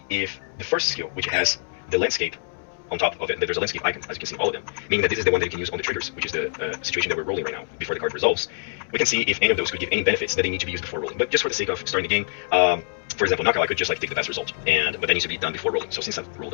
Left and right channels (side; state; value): right; silent; 62 dB below the other